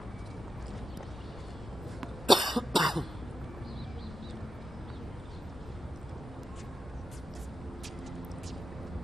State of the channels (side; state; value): both; normal; correlation 0.90